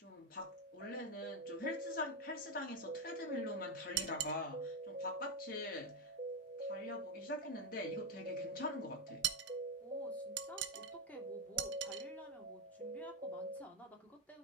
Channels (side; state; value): both; normal; correlation 0.08